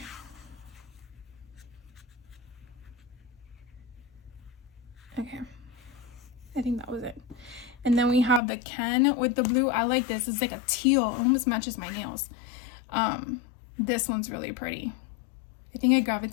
Okay, I think that was it. And then we have the Ken with the blue. I like this. It's like a teal. It almost matches my nails. This one's really pretty. I think I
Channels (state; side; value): drops out; right; at 8.4 s